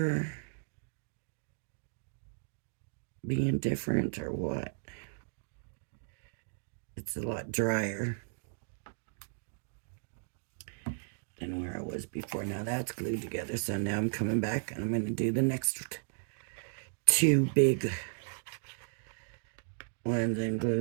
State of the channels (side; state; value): left; silent; digital silence